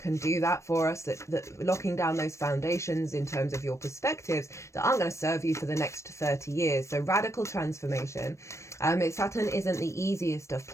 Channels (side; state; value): right; late; 0.14 ms